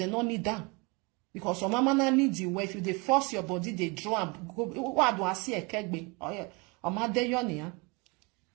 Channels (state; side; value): quieter; left; 28.7 dB